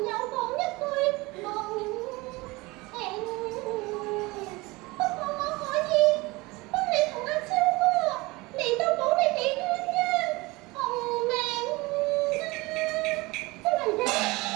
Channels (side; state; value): left; quieter; 22.8 dB